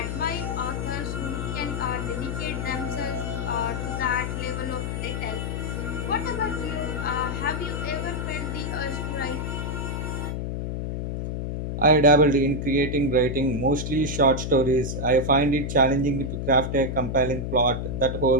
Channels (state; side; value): noise; left; hum, 3 dB below the sound